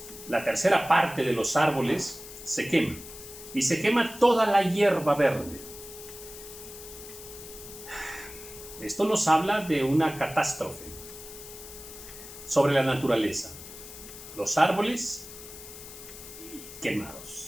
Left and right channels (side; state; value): left; noise; hiss, 14 dB below the sound